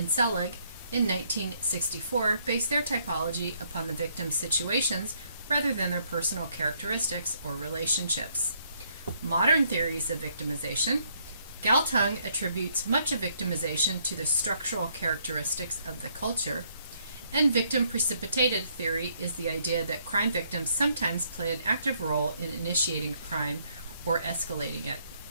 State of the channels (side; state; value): both; inverted; correlation -0.70